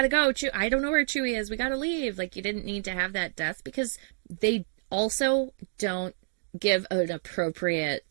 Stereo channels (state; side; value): silent; left; digital silence